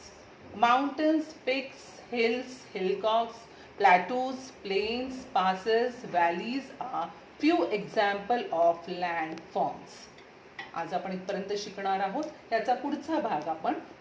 Mountains, peaks, hills, hillocks, plateaus, plains, passes, valleys are few examples of landforms. आज आपण इथपर्यंत शिकणार आहोत. याचा पुढचा भाग आपण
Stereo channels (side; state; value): both; identical; correlation 1.00